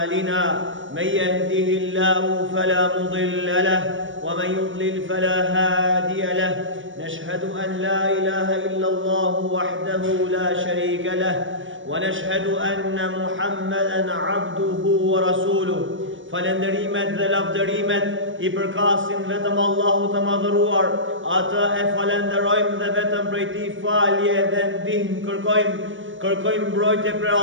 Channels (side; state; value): left; late; 0.57 ms